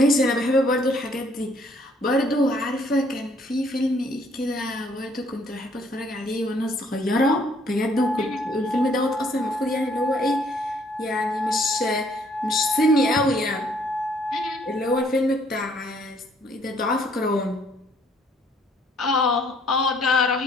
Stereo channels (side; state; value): both; normal; correlation 0.64